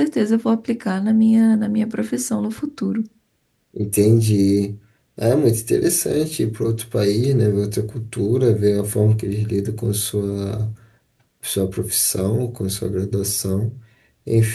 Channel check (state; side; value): identical; both; correlation 1.00